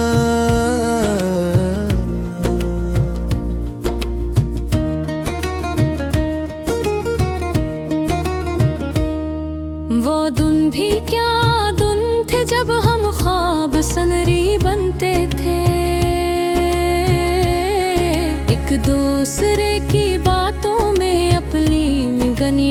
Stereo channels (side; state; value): both; identical; correlation 1.00